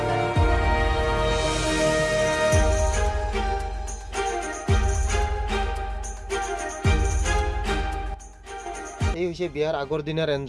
এই হৈছে বিয়াৰ আগৰ দিনাৰ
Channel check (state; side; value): identical; both; correlation 1.00